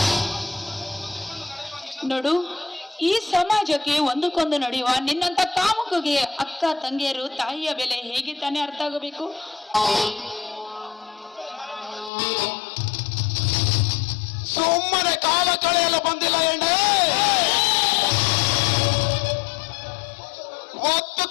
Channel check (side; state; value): right; drops out; at 12.1 s